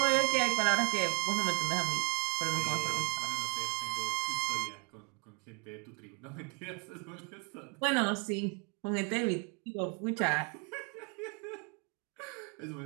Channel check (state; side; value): quieter; left; 30.8 dB